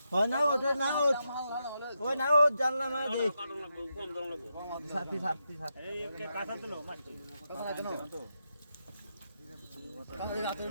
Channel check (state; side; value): inverted; both; correlation -0.85